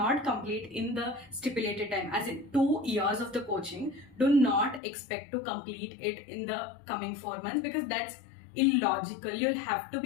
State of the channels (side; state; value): right; drops out; at 4.8 s